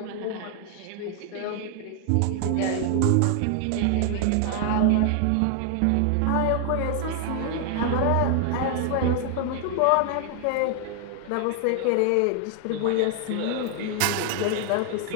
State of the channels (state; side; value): different; both; correlation 0.00